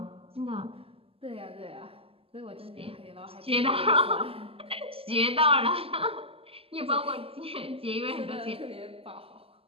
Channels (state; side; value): late; left; 0.28 ms